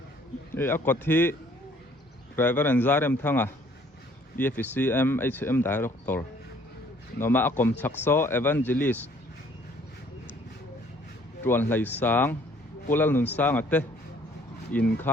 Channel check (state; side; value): normal; both; correlation 0.59